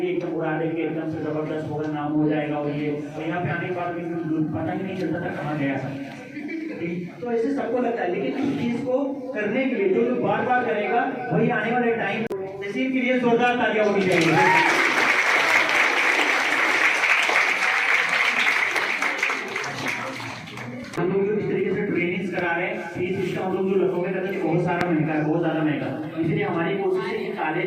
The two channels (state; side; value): identical; both; correlation 1.00